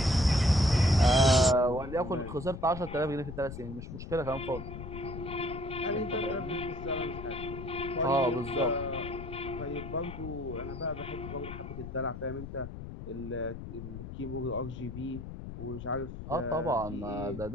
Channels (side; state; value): left; noise; rumble, 10 dB below the sound